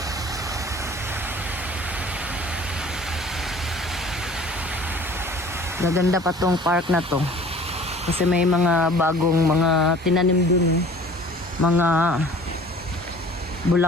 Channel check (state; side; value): normal; both; correlation 0.48